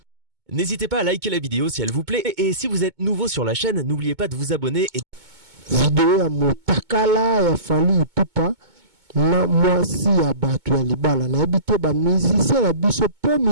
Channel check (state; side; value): late; left; 2.2 ms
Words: N'hésitez pas à liker la vidéo si elle vous plaît et si vous êtes nouveau sur la chaîne, n'oubliez pas de vous abonner. Vidéo ya motakala ya Fally Ipupa na mwasi ya bato ya libala na ebite ba musicien na biso po